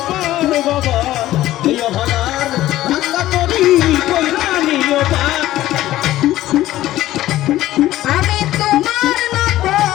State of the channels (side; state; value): right; quieter; 14.8 dB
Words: পার বাবা, এই অভাগার ভাঙ্গা তরি কইরা নিও পার। আমি তোমার নাম